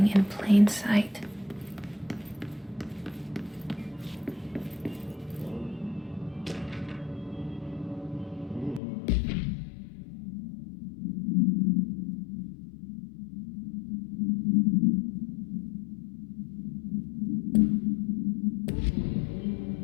in plain sight.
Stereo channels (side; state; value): right; drops out; at 8.8 s